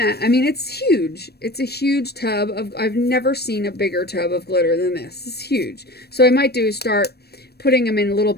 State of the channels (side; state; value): right; late; 0.47 ms